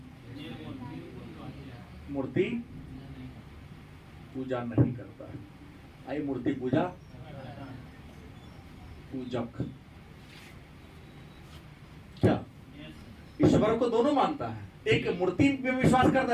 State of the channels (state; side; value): identical; both; correlation 1.00